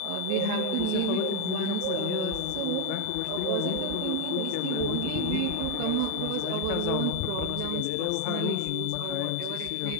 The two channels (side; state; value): both; different; correlation 0.01